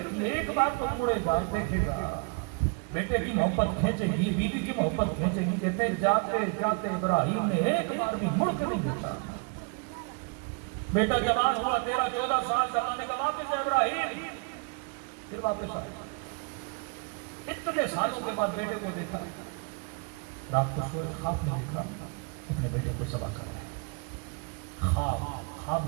تھی ایک بار تو مڑے گا دیکھے گا، بیٹے کی محبت کھینچے گی، بیوی کی محبت کھینچے گی. کہتے جاتے جاتے ابراہیم نے ایک بار بھی مڑ کے نہیں دیکھا. بیٹا جوان ہوا 13-14 سال کا، اللہ نے کہا واپس ہے ابراہیم، پھر واپس آیا. اتنے سالوں کے بعد بیٹے کو دیکھا، رات کو سوئے خواب میں دیکھا اپنے بیٹے کو ذبح کر رہے ہیں. خواب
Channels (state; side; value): quieter; left; 33.4 dB